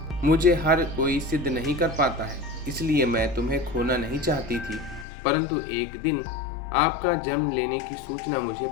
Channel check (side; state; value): right; drops out; at 5.1 s